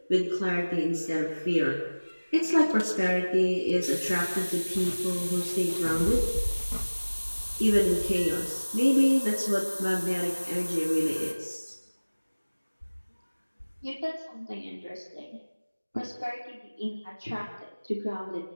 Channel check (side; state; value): both; inverted; correlation -1.00